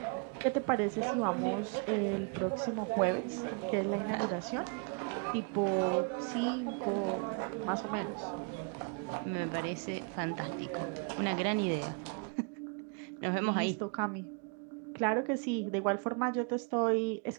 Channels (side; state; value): left; quieter; 36.2 dB